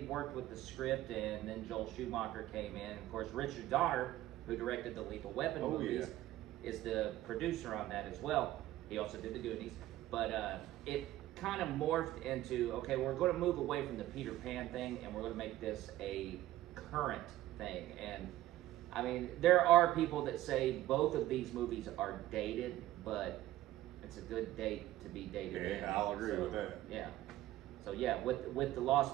worked with the script, and then Joel Schumacher came in, of course, Richard Donner, who directed the Lethal Weapon movies, is the producer on that as well. He also did the Goonies. But it kind of morphed into, okay, we're going to move away from the Peter Pan thing, and we're going to make this a current thing. And I mean, there are people that say both of these movies are dated, but it's a good date to be dated. Yeah, I'll agree with that. Yeah. So yeah, with The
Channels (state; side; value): quieter; left; 15.0 dB